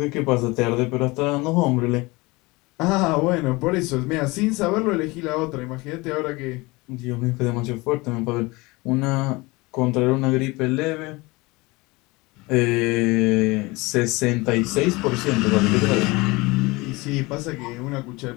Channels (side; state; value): right; quieter; 23.5 dB